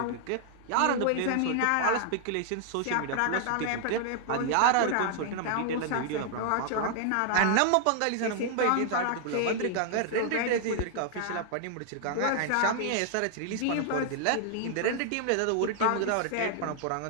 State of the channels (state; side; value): different; both; correlation 0.00